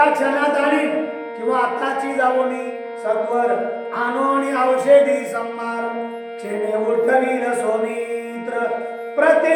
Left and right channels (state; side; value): identical; both; correlation 1.00